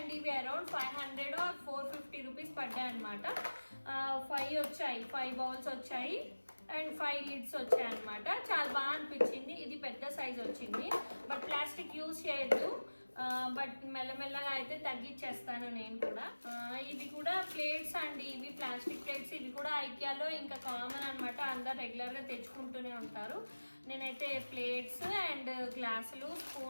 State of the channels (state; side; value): inverted; both; correlation -1.00